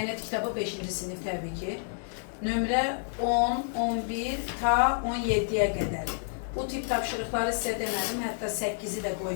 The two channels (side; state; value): right; silent; 58 dB below the other